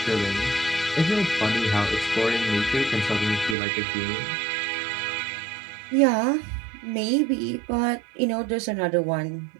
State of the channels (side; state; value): left; drops out; at 3.6 s